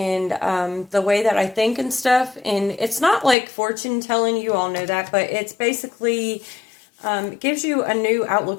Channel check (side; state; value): right; drops out; at 3.4 s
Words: the way that I think and stuff. And it's not like fortune telling, you all know that, but it's basically it gives you a new